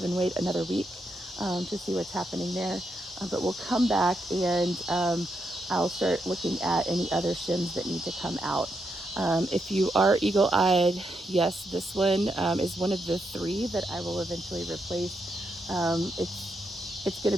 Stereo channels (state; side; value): normal; both; correlation 0.82